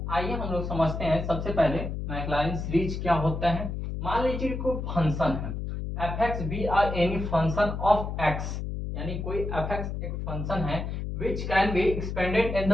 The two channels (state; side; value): noise; left; hum, 4 dB below the sound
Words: आइए हम लोग समझते हैं। सबसे पहले मैक्लॉरिन सीरीज क्या होता है। मान लीजिए कोई फंक्शन है F X be R any function of X, यानी कोई एफ एक्स एक फंक्शन है which can be expanded in